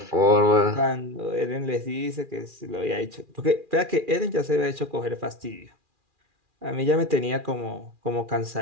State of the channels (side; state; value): left; late; 2.4 ms